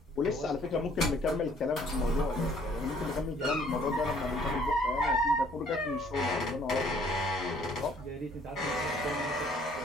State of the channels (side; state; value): both; normal; correlation 0.60